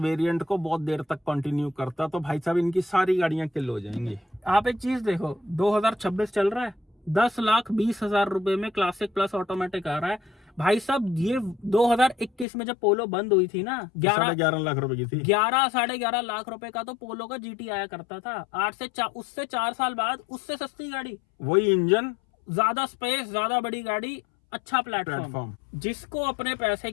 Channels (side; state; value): right; drops out; at 12.5 s